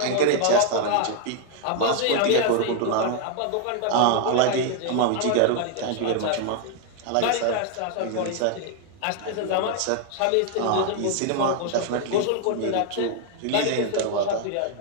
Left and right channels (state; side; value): different; both; correlation 0.00